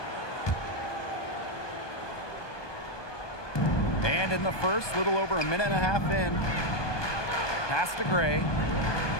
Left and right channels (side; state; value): right; late; 1.2 ms